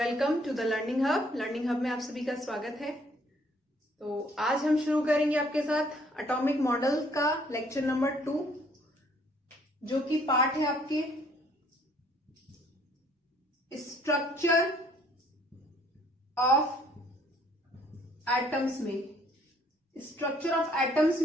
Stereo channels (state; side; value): normal; both; correlation 0.63